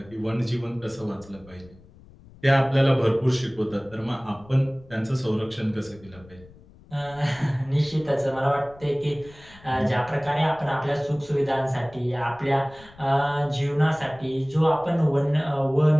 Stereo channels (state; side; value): noise; left; rumble, 23 dB below the sound